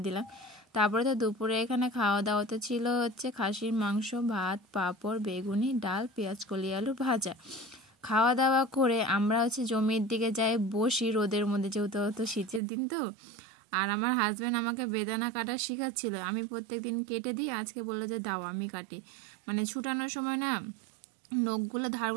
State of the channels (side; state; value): left; drops out; at 12.6 s